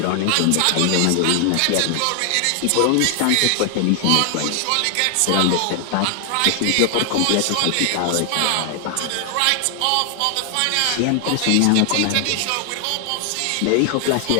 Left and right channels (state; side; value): different; both; correlation 0.00